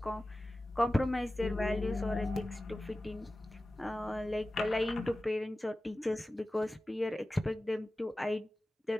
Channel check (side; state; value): both; normal; correlation 0.96